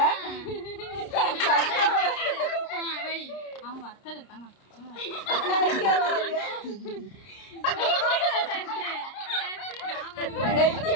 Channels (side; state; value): right; late; 30 ms